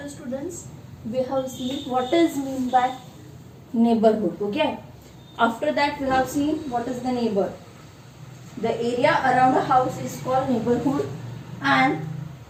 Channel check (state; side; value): identical; both; correlation 1.00